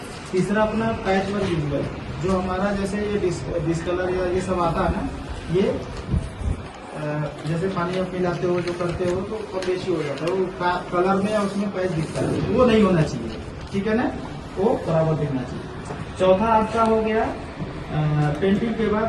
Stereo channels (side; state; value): both; identical; correlation 1.00